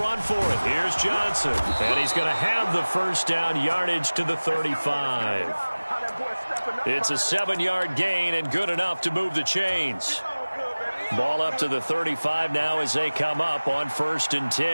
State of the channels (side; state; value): both; inverted; correlation -1.00